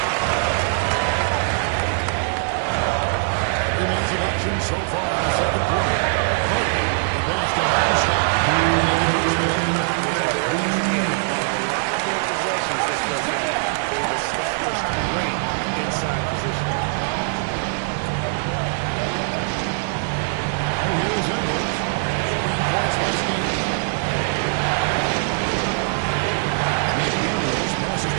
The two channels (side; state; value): left; silent; digital silence